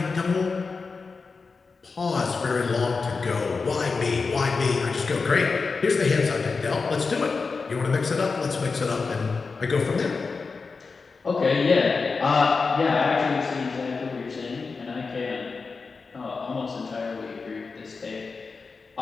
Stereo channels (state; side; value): quieter; right; 4.5 dB